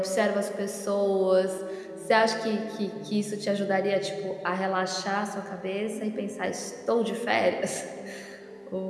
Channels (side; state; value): both; identical; correlation 1.00